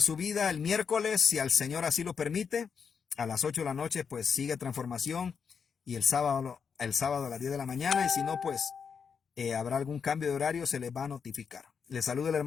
su vida el miércoles, si al Señor así lo permite, a las 8 de la noche, pues sigue transformación, y el sábado a las 10 de la mañana, y si no, pues habrá algún cambio de horario, se les va a notificar. Les saluda el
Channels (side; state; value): right; quieter; 6.4 dB